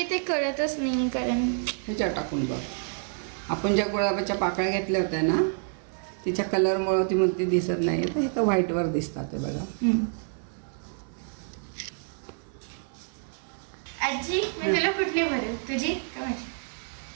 कळतच नाही कारण ह्याच्यावर टाकून बघ. आपण ज्या गुलाबाच्या पाकळ्या घेतल्या होत्या ना तिच्या कलरमुळं ती म्हणते दिसत नाही, तर हे तर व्हाईटवर दिसतात ते बघा. आजी मी तुला कुठली भरू, तुझी का माझी?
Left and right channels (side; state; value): left; silent; 59 dB below the other